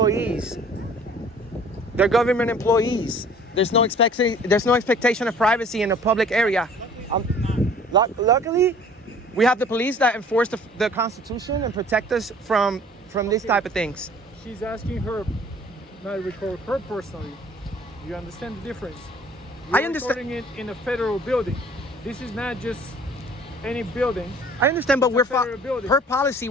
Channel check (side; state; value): both; normal; correlation 0.51